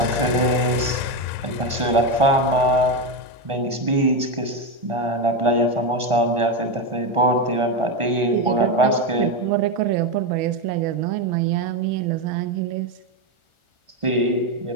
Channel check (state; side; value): late; left; 1.4 ms